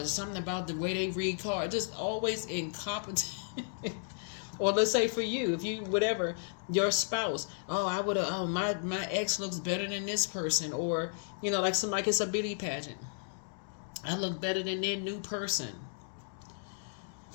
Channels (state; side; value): silent; right; digital silence